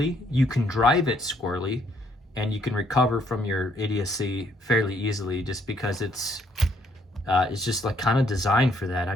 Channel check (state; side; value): normal; both; correlation 0.68